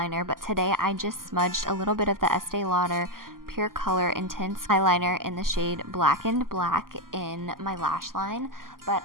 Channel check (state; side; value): late; left; 0.91 ms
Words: but today I just smudged a little bit of the Estee Lauder Pure Color Intense eyeliner in the shade Blackened Black in my lash line, but